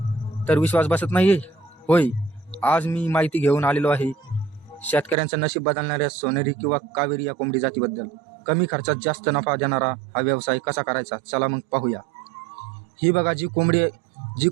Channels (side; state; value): left; drops out; at 5.2 s